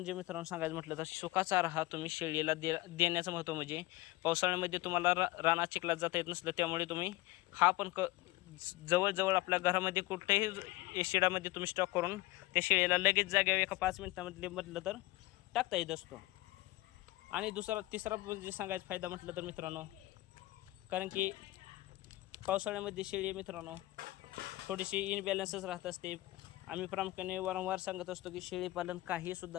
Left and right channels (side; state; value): right; quieter; 19.4 dB